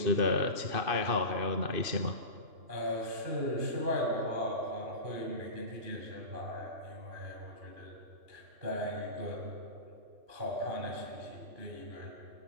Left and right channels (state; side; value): late; left; 2.6 ms